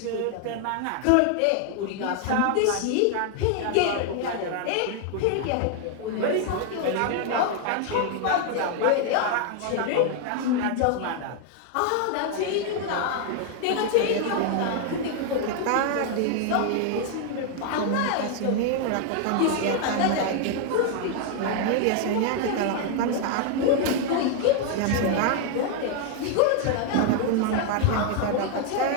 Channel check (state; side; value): different; both; correlation 0.00